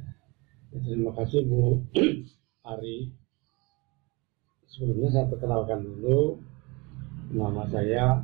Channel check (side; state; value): left; quieter; 26.8 dB